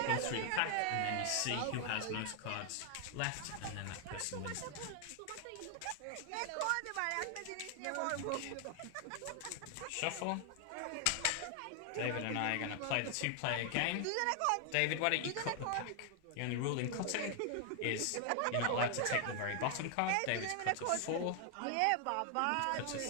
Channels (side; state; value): both; different; correlation 0.00